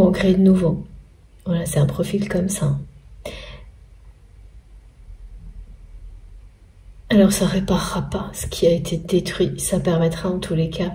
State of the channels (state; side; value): identical; both; correlation 1.00